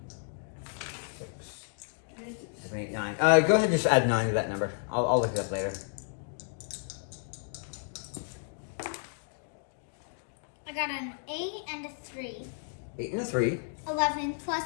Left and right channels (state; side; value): silent; right; 56 dB below the other